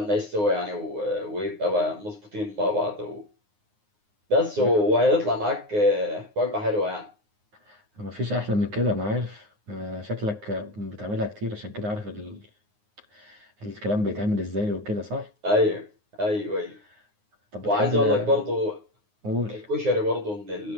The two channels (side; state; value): left; late; 9.6 ms